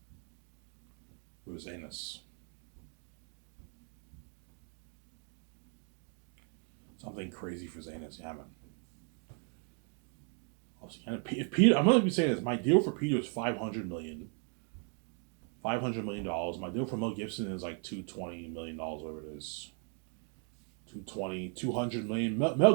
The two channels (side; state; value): left; quieter; 39.1 dB